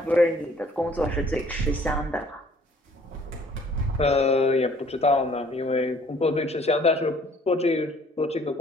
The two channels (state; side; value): normal; both; correlation 0.57